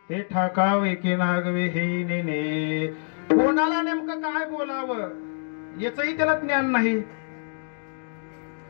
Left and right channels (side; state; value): right; silent; digital silence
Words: हे ठाकावे की नागवे हे नेने. कोणाला नेमकं काय बोलावं याचंही त्याला ज्ञान नाही.